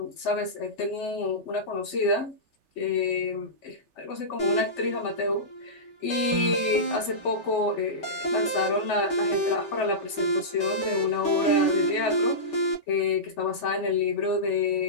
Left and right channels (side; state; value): right; late; 3.3 ms